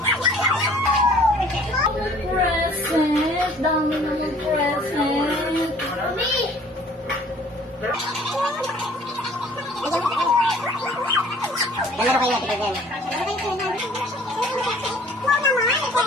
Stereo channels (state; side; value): normal; both; correlation 0.54